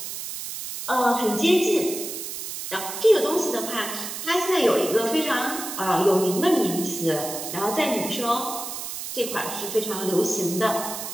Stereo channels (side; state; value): right; noise; hiss, 7 dB below the sound